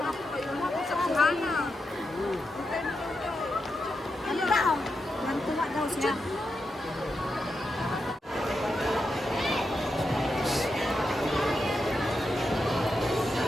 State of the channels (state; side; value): normal; both; correlation 0.86